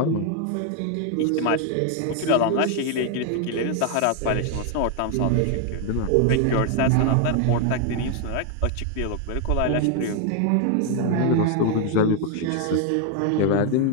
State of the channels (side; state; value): both; different; correlation 0.00